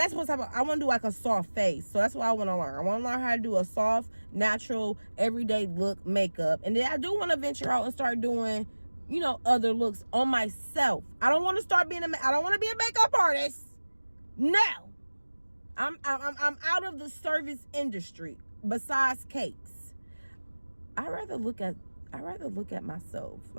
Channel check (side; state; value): both; inverted; correlation -1.00